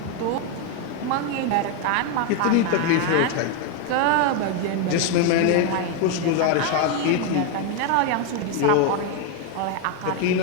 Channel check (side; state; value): both; different; correlation 0.01